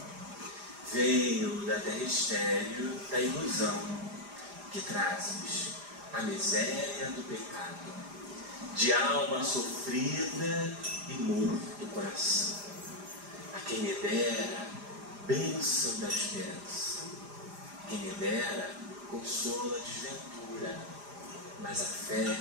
Venho da terra estéril da ilusão, que trazes a miséria do pecado, de alma sofrida e morto coração. A quem me dera bênção da esperança, quem me dera consolo a desventura, mas a fé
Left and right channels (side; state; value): left; late; 4.9 ms